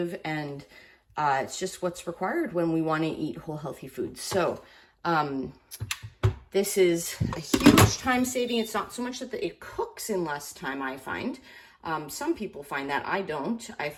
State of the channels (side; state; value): both; identical; correlation 1.00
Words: and it's just what's required when we want to eat whole healthy foods. So this is a huge time saving. It's not so much that it cooks in less time, I find. Some people find that. I don't. I